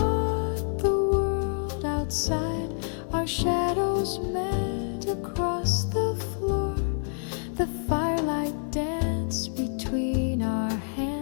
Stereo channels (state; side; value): silent; right; 60 dB below the other